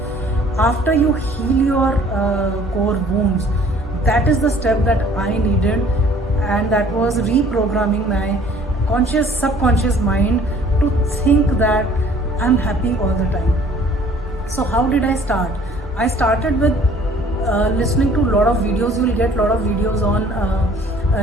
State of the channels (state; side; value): normal; both; correlation 0.55